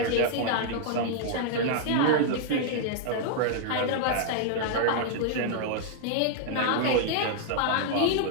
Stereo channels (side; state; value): both; different; correlation -0.01